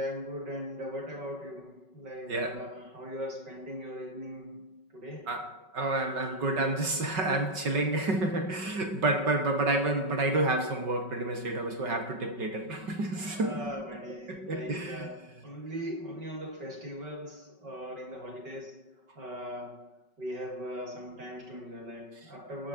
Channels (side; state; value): left; late; 5.3 ms